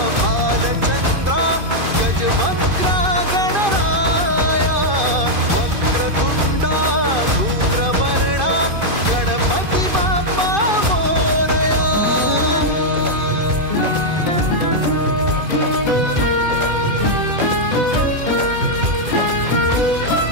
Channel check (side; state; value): left; late; 2.5 ms